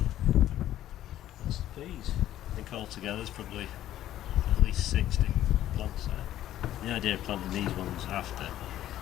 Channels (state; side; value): quieter; right; 12.8 dB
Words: Altogether there's probably at least 60 plants there. The idea of planting these ones after